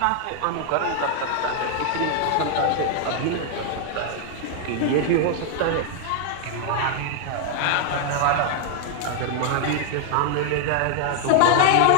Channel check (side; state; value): both; different; correlation 0.00